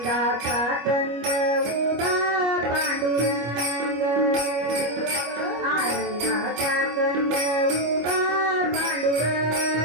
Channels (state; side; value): late; left; 25 ms